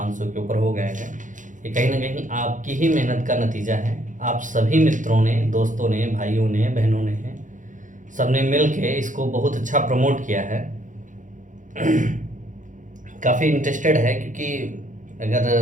के ऊपर हो गए हैं। ये कहीं ना कहीं आपकी ही मेहनत का नतीजा है। आप सभी मित्रों ने, दोस्तों ने, भाइयों ने, बहनों ने, सबने मिल के इसको बहुत अच्छा प्रमोट किया है। काफ़ी इंटरेस्टेड है क्योंकि अगर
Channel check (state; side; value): late; left; 0.37 ms